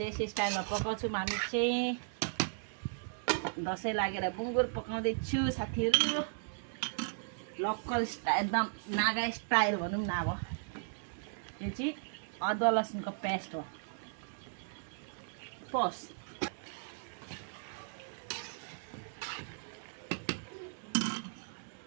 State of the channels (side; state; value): left; silent; digital silence